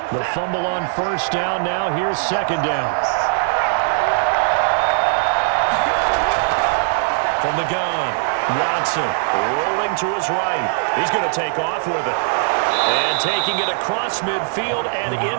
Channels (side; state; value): left; silent; 56 dB below the other